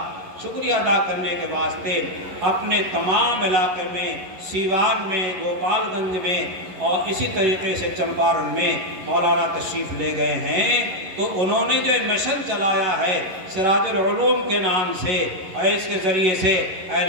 شکریہ ادا کرنے کے واسطے اپنے تمام علاقے میں، سیوان میں، گوپال گنج میں اور اسی طریقے سے چمپارن میں مولانا تشریف لے گئے ہیں، تو انہوں نے جو مشن چلایا ہے سراج العلوم کے نام سے، اور اس کے ذریعے سے اہل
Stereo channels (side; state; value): left; late; 11 ms